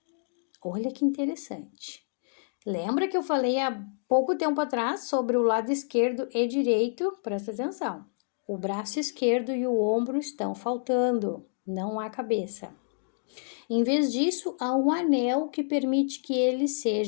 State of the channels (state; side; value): silent; right; digital silence